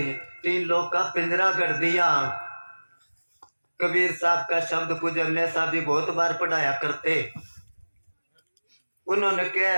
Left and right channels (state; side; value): inverted; both; correlation -1.00